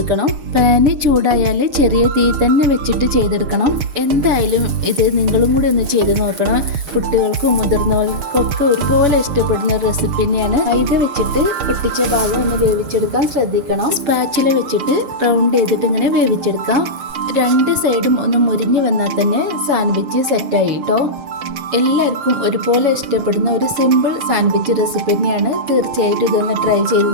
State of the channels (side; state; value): left; late; 6.4 ms